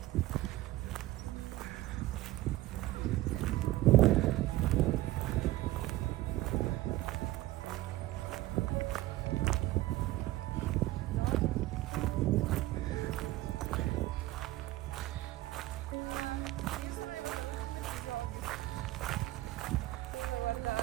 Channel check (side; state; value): left; quieter; 16.7 dB